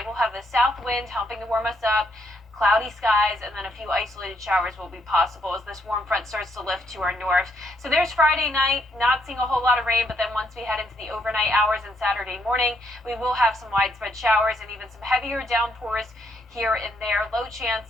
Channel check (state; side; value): normal; both; correlation 0.74